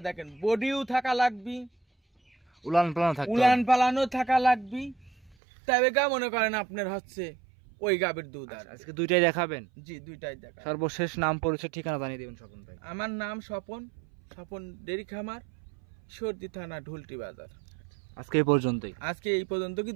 দেখেন বডিও থাকা লাগবি, উলান পালান থাকতে উলান হবে। পালানো থাকা লাগবি, তবে গা মনে করেন আপনার হচ্ছে ওই গাবির দুধ। আর আজকে দুইটাই দেখাবেন? জি দুইটাই দেখা। সর্বশেষ নাম পরিচয় ঠিকানা জানিয়ে দিবেন স্বপন ভাই। আমার নাম স্বপন ডেরি খামার, সর্দি থানা, ঢুলটি বাজার। আজকে এই পর্যন্তই। আজকে এই পর্যন্ত কি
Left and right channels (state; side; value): drops out; left; at 5.4 s